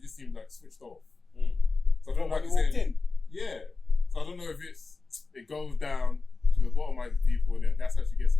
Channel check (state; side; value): quieter; right; 3.9 dB